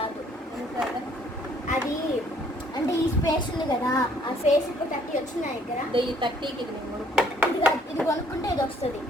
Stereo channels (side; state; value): both; normal; correlation 0.62